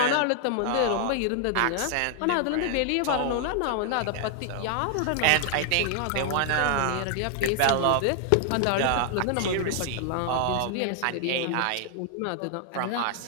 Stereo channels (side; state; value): both; different; correlation 0.00